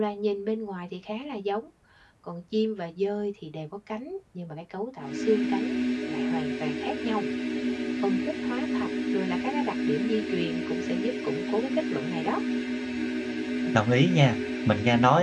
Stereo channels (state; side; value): identical; both; correlation 1.00